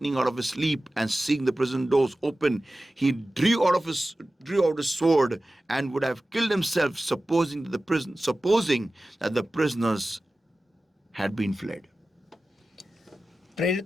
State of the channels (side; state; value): both; normal; correlation 0.96